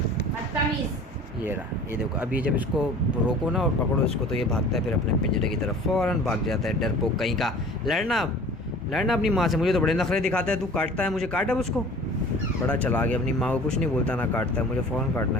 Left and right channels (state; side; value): normal; both; correlation 0.44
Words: बदतमीज। ये रहा, ये देखो। अभी जब इसको रोको ना और पकड़ो इसको तो ये भागता है फिर अपने पिंजरे की तरफ, फ़ौरन भाग जाता है, डरपोक कहीं का। लड़ना अब, लड़ना अपनी माँ से। मुझे तो बड़े नखरे दिखाता है, तू काटता है मुझे, काट अब उसको। बड़ा चला गया, अपनी माँ को कुछ नहीं बोलता ना काटता है, मुझे फ़ौरन काटना